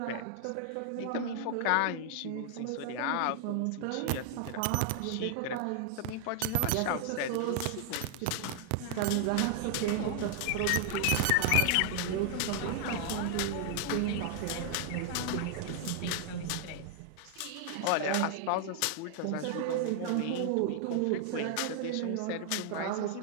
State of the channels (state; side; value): different; both; correlation 0.00